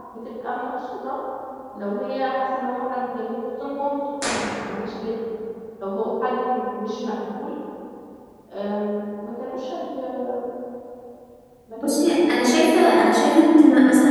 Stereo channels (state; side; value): identical; both; correlation 1.00